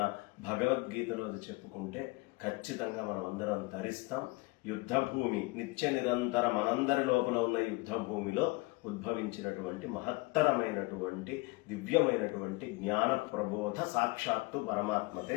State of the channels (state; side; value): quieter; right; 24.2 dB